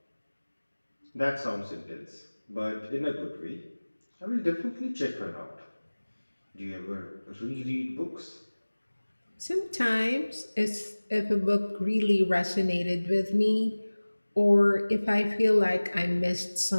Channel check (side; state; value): both; inverted; correlation -1.00